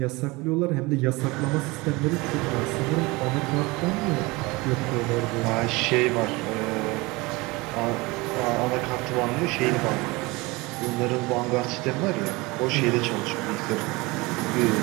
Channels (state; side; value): quieter; left; 23.6 dB